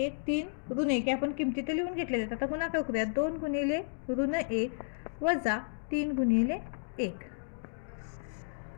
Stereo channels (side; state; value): right; silent; digital silence